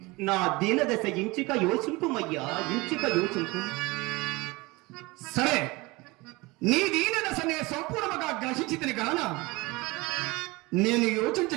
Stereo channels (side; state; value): left; quieter; 23.2 dB